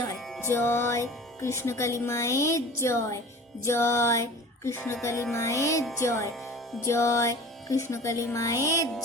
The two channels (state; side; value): normal; both; correlation 0.40